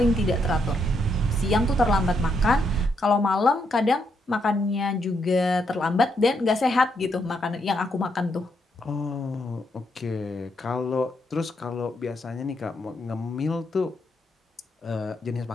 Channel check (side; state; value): both; normal; correlation 0.78